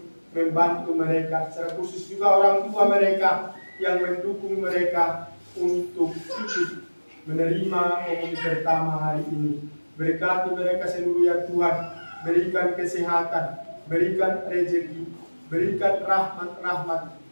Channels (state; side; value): inverted; both; correlation -1.00